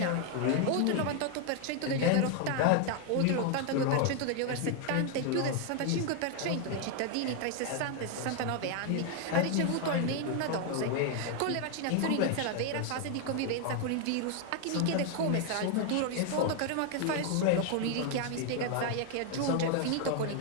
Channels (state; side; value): different; both; correlation 0.01